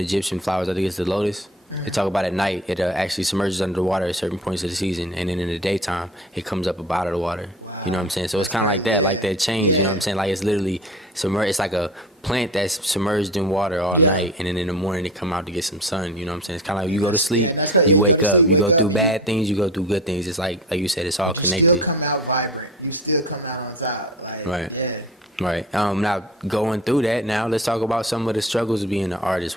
Egyptian flowers. I think it's the lotus. They talk about at night it actually submerges under the water at certain points of the season, and then in the daytime it comes up out of the water. You know what I'm saying? So it's kind of like that change. You know what I'm saying? Like it's literally submerged. It's like a plant that's submerged in water all night, and then in the morning they come out to get some sun. You know what I'm saying? It's kind of like you go to sleep, you wake up, you go through bad things, you go through good things. It's like you said, it's all connected. You still come out vibrant. You still come out on top. Like, right. Yeah. Right. Now going through that, now let's talk about some of the struggles of being an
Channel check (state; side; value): normal; both; correlation 0.34